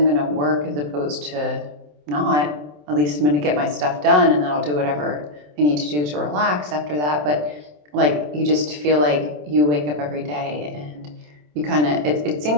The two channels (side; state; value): left; late; 27 ms